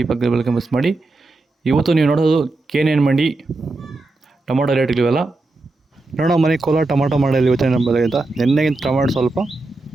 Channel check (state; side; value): quieter; left; 3.1 dB